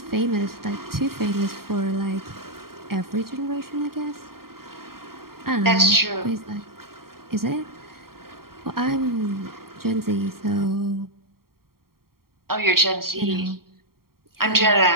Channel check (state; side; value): late; left; 0.93 ms